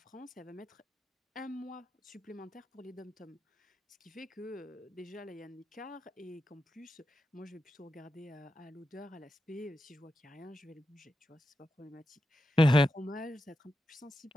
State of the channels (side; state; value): both; normal; correlation 0.88